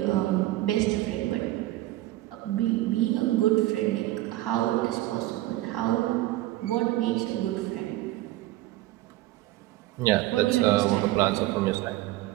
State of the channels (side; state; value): left; quieter; 16.6 dB